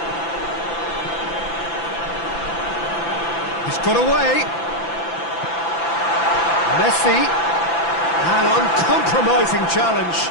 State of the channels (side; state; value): right; late; 5.9 ms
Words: He's got away. Messi. An uncompromising challenge.